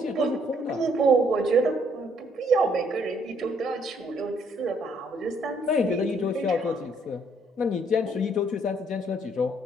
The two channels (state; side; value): normal; both; correlation 0.66